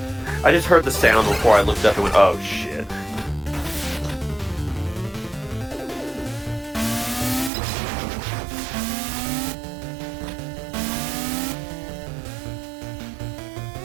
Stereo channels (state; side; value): drops out; left; at 7.5 s